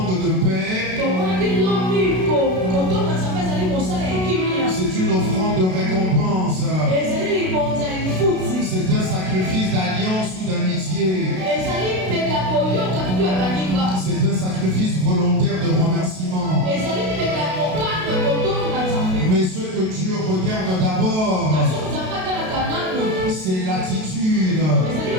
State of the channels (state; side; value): late; left; 32 ms